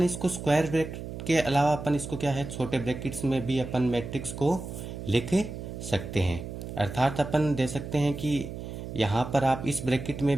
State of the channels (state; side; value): noise; right; hum, 9 dB below the sound